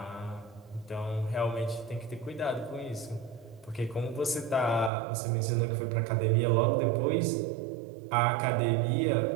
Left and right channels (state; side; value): drops out; left; at 4.9 s